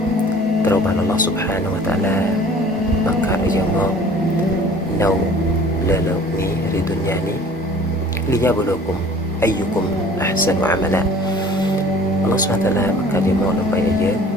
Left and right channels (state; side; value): normal; both; correlation 0.49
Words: ត្រូវបានអល់ឡោះស៊ុបហានវតាឡាបង្កើតឲ្យយើងមកនៅលើលោកនេះឬទុនយ៉ានេះលីយ៉ាបលូគុំអយគុំអះសានអាម៉ាឡាអល់ឡោះស៊ុបហានវតាឡាបង្កើតយើងមកដើម្បីឲ្យយើង